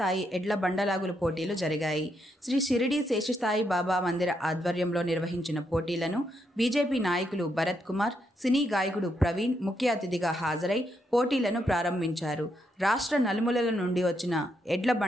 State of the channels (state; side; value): normal; both; correlation 0.79